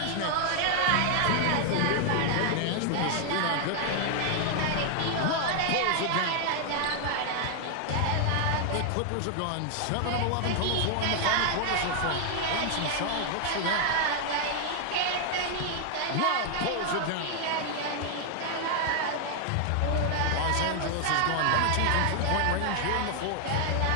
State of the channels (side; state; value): both; different; correlation 0.00